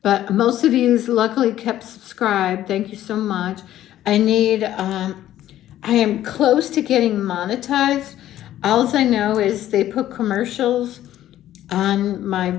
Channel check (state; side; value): quieter; right; 12.9 dB